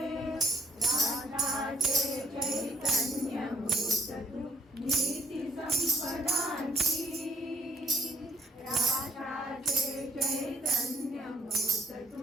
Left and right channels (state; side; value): normal; both; correlation 0.63